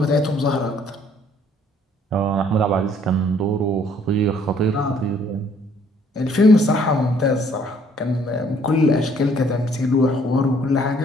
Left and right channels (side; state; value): both; normal; correlation 0.62